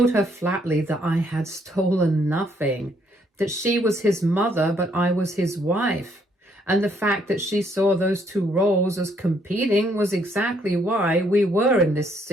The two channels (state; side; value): normal; both; correlation 0.69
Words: her flatly that I had stolen nothing, that she was his mother but I was his wife, and the fact that she saw those two roles as competing was exactly why we were in this